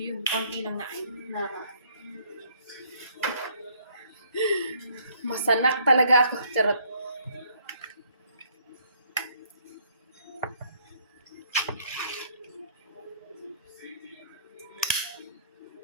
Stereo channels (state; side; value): inverted; both; correlation -0.64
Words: yun, konti lang na masanak talaga ako. Charot.